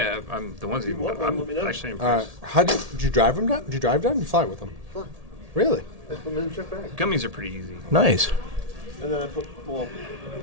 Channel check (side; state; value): left; late; 1.8 ms